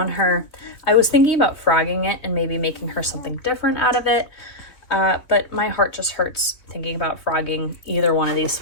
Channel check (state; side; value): late; right; 3.2 ms